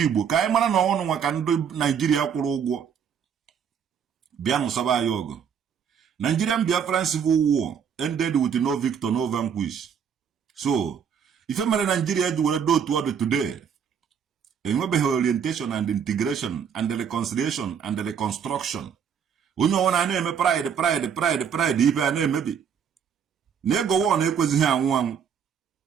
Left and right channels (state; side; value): quieter; left; 7.5 dB